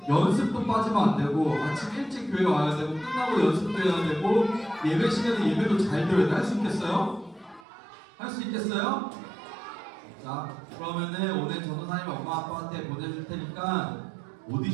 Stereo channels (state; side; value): drops out; left; at 7.7 s